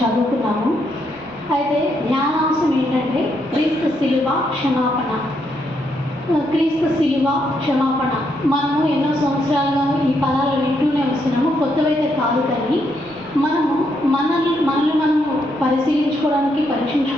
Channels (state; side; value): noise; right; rumble, 26 dB below the sound